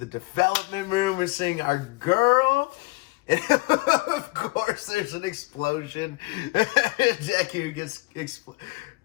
development room. We're seeing our girl. And of course, there's an explosion. Deku gets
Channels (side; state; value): right; quieter; 24.5 dB